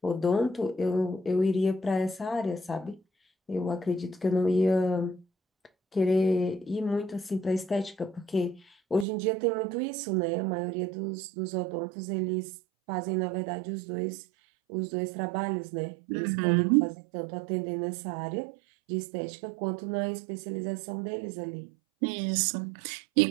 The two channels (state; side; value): drops out; left; at 9.1 s